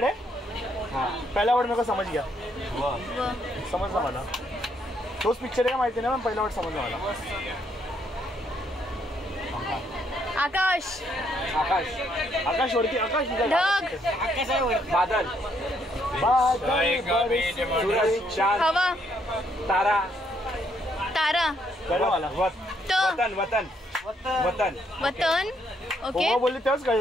है. पहिला वर्ड मेरे को समझ गया. समजला मला. तोच पिक्चर आहे का माहिती नाही, पण पहिला वर्ड समजला मला. आकाश. आकाश वरती. आकाश. ढग. बादल. चांद. हवा. तारा. कळलं मला. वतन. ओके. बोलली तेव्हाच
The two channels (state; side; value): normal; both; correlation 0.72